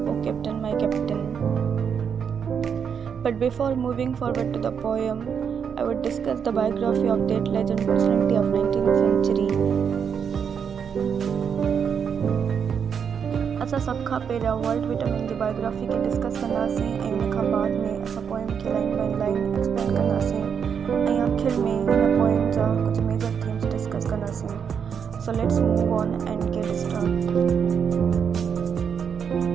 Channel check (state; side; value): quieter; left; 7.2 dB